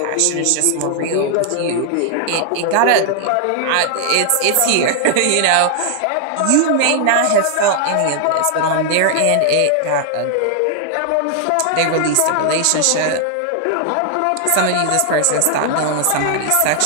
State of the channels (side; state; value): both; different; correlation 0.00